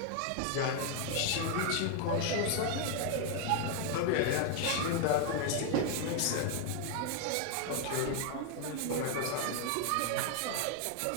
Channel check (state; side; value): different; both; correlation 0.01